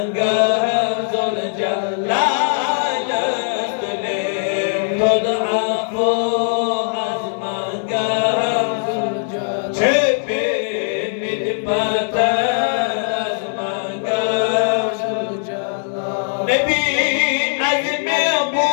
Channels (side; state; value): right; silent; 58 dB below the other